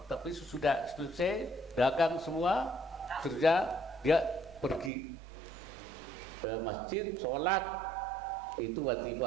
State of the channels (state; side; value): drops out; left; at 4.9 s